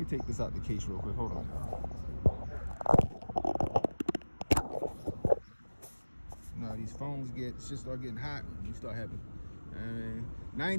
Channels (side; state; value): both; inverted; correlation -1.00